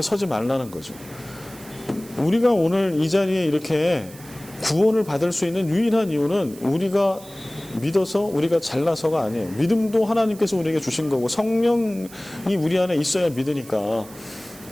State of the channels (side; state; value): right; noise; hiss, 20 dB below the sound